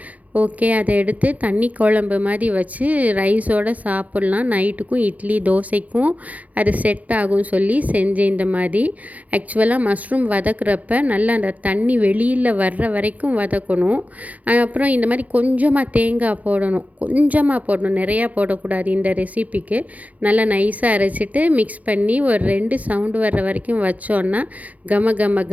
ஓகே, அதை எடுத்து தண்ணி குழம்பு மாதிரி வச்சு ரைஸோடு சாப்பிட்லாம். நைட்டுக்கும் இட்லி தோசைக்கும் அது செட் ஆகும் சொல்லி செஞ்சேன். இந்த மாதிரி ஆக்சுவலாக மஷ்ரூம் வதக்குறப்ப நல்லா அந்த தண்ணி வெளியில் வர்ற வரைக்கும் வதக்கணும். அப்புறம் இந்த மாதிரி கொஞ்சமாக தேங்காய் போடணும், நிறையா போடக்கூடாது. இந்த ரெசிபிக்கு நல்லா நைஸாக அரைச்சிட்டு மிக்ஸ் பண்ணி ஒரு 2 சவுண்டு வர்ற வரைக்கும் வச்சோன்னா கம கம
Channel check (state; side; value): late; left; 0.074 ms